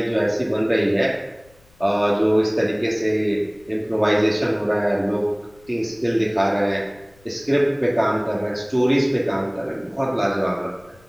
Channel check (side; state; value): left; noise; rumble, 29 dB below the sound